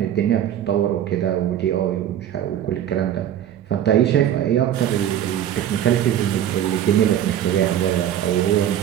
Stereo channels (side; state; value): left; quieter; 10.6 dB